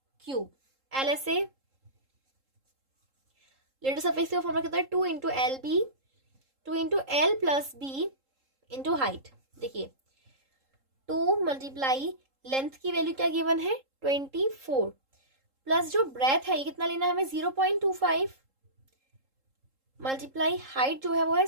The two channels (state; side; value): late; left; 3.7 ms